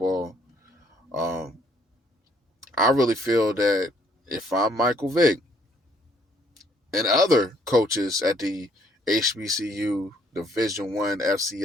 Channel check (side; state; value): both; normal; correlation 0.66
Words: Um, I really feel that if I'm Michael Vick and other coaches at the HBCU Division 1